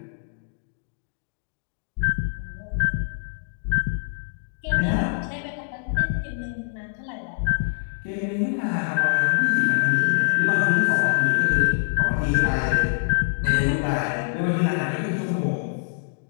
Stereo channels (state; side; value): silent; right; 62 dB below the other